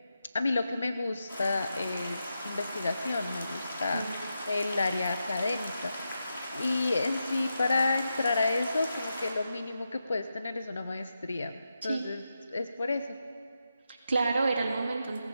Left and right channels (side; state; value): both; inverted; correlation -0.88